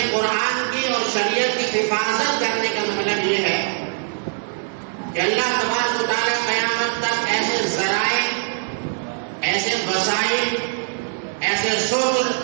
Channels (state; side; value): silent; left; digital silence